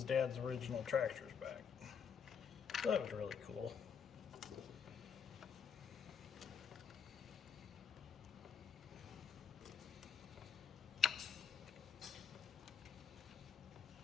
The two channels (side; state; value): right; quieter; 6.8 dB